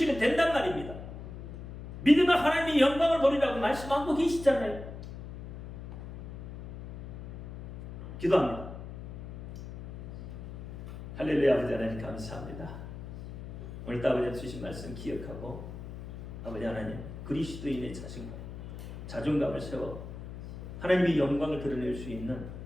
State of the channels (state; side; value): noise; left; hum, 11 dB below the sound